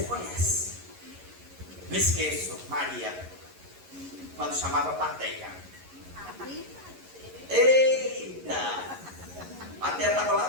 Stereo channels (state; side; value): late; left; 11 ms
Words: conhece. Não esqueço, Maria, quando chamava plateia. Eita! A plateia estava lá